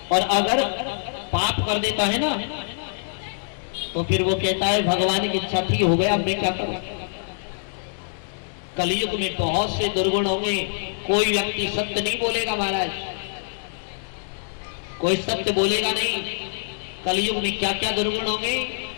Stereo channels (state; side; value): silent; right; digital silence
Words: और अगर पाप कर देता है ना तो फिर वो कहता है भगवान की इच्छा थी, हो गया, मैं क्या करूं। कलयुग में बहुत से दुर्गुण होंगे, कोई व्यक्ति सत्य नहीं बोलेगा महाराज, कोई सत्य बोलेगा नहीं। कलयुग में क्या क्या दुर्गुण होंगे।